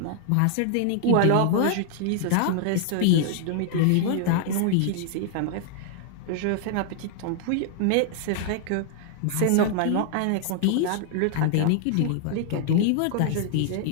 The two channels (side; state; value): both; different; correlation 0.00